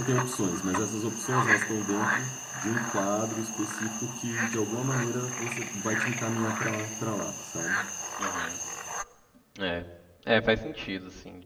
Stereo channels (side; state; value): both; identical; correlation 1.00